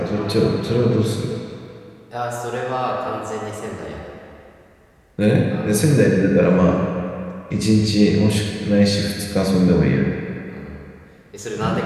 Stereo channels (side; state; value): both; identical; correlation 1.00